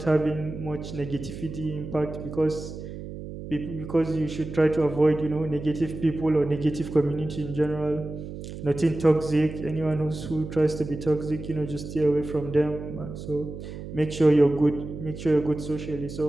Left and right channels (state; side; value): noise; right; hum, 10 dB below the sound